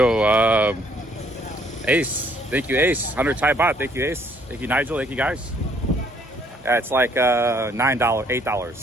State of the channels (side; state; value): both; normal; correlation 0.65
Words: Ace. Thank you, Ace. 100 Thai baht. Thank you, Ace. Thank you, Nigel. Thank you, guys. Yeah, it's like $9,